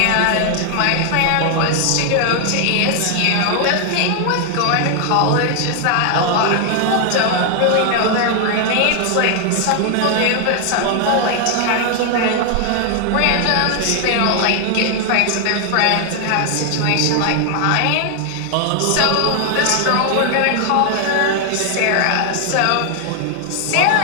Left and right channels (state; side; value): different; both; correlation 0.00